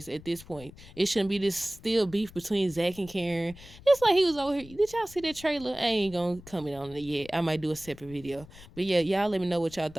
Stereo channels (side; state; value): left; noise; rumble, 20 dB below the sound